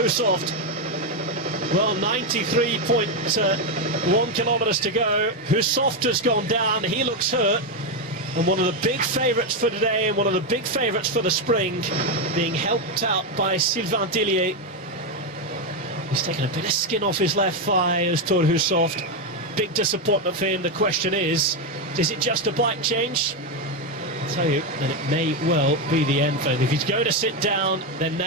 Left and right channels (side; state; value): both; normal; correlation 0.07